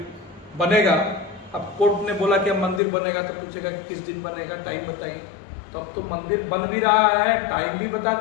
बनेगा। अब कोर्ट ने बोला कि अब मंदिर बनेगा, तो पूछेगा कि किस दिन बनेगा, टाइम बताइए। तो अब तो मंदिर बन भी रहा है, टाइम भी बता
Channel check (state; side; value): drops out; right; at 2.8 s